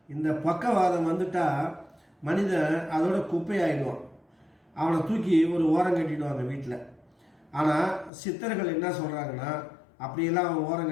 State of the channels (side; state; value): right; drops out; at 8.1 s